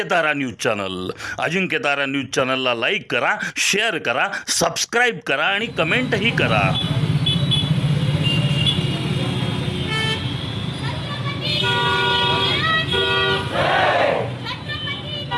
news channel. Ajinkyatara news चॅनलला लाईक करा, शेअर करा, सबस्क्राईब करा आणि कमेंटही करा.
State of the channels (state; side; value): identical; both; correlation 1.00